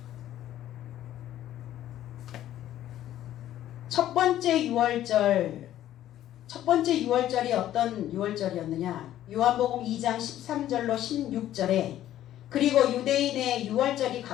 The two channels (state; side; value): quieter; right; 12.6 dB